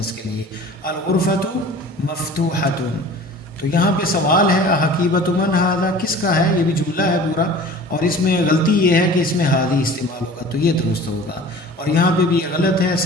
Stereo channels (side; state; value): both; normal; correlation 0.42